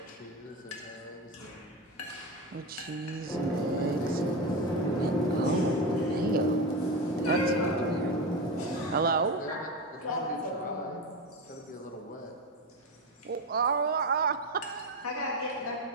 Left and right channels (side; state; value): both; normal; correlation 0.18